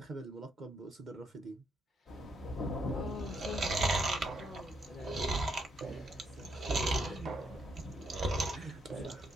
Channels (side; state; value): both; normal; correlation 0.75